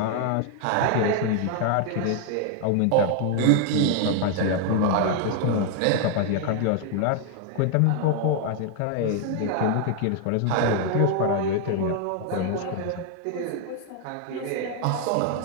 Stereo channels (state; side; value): different; both; correlation 0.00